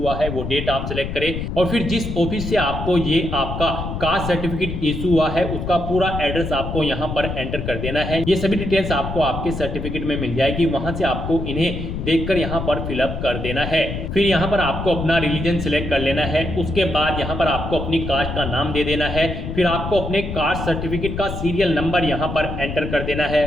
है वो डेट आप सिलेक्ट करें और फिर जिस ऑफिस से आपको ये आपका कास्ट सर्टिफिकेट इशू हुआ है उसका पूरा एड्रेस आपको यहाँ पर एंटर कर देना है। ये सभी डिटेल्स आपको आपके सर्टिफिकेट में मिल जाएगी, वहां से आपको इन्हें देखकर यहाँ पर फिलअप कर देना है। फिर यहाँ पर आपको अपना रिलीजन सिलेक्ट कर लेना है, उसके बाद यहाँ पर आपको अपनी कास्ट का नाम दे देना है, फिर आपको अपने कास्ट सर्टिफिकेट का सीरियल नंबर यहाँ पर एंटर कर देना है।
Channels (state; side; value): noise; left; rumble, 5 dB below the sound